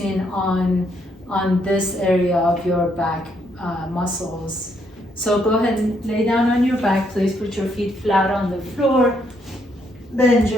on this area of your back muscles. So go ahead and lay down on your back, please. Put your feet flat on the floor. Bend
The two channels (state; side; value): normal; both; correlation 0.73